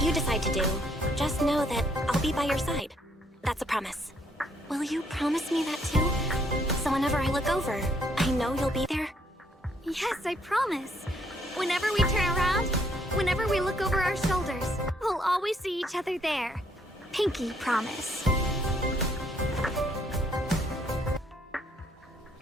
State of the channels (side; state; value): both; normal; correlation 0.69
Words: decide to do, just know that I'll be by your side. That's a promise. Will you promise me that too? So whenever I look over, I know you'll be there? Yes, I promise. Whenever we turn around, whenever we look over our shoulders, we'll always see each other there. Pinky promise.